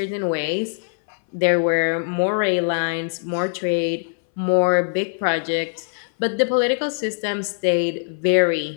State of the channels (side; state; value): right; silent; 61 dB below the other